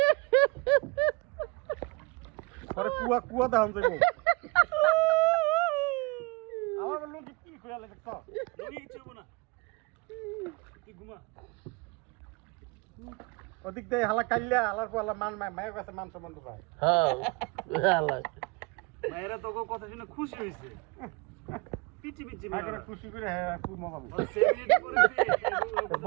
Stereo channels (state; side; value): quieter; left; 27.8 dB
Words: আরে কুয়া কুয়া দাম যাইবো আমার লুঙ্গি কি কইলা দেখছ লুঙ্গি কিছু না তুই ঘুমা ওদিক দিয়ে হালা কাইলা হালার পর হালা মান মায়ের কাছে মান সম্মান পায় হ্যাঁ হালা মায়েরা তোকে কথা শুনে খুশি হইছে পিটি পিটি মায়ের খুশি করে হ্যাঁ খুব মজা ওই পাইছে সেদিন করেছে